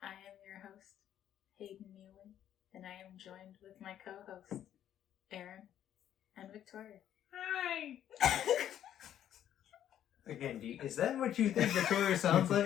I am your host, Hayden Neely, and I am joined with my co-hosts, Aaron and Victoria. Hi! Again, is that what you think Victoria sounds like?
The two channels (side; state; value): right; quieter; 10.8 dB